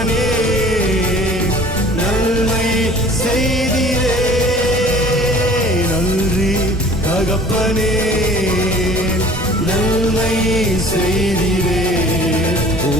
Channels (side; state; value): both; normal; correlation 0.48